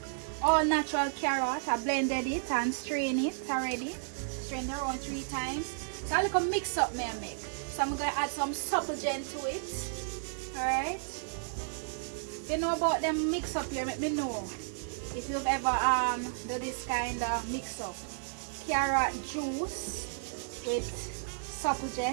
All natural carrot. I blended it and strained it already. Strained it around 3 times. So I like a mix up me I make. So I'm going to add some supplegen to it. Alright. If you know about them mix up here, let me know if you've ever do this kind of mix up. Carrot juice with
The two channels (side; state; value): left; silent; 55 dB below the other